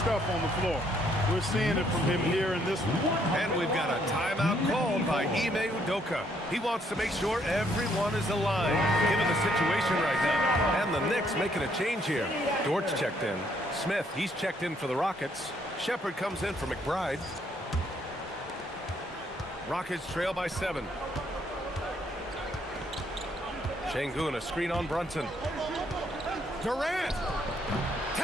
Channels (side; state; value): both; normal; correlation 0.69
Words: on the floor. We're seeing it from him here in this one. And we've got a timeout called by Ime Udoka. He wants to make sure everyone is aligned, given the situation right now. And the Knicks making a change here. Dort's checked in. Smith, he's checked in for the Rockets. Shepard comes in for McBride. Rockets trail by 7. Şengün, a screen on Brunson. Durant!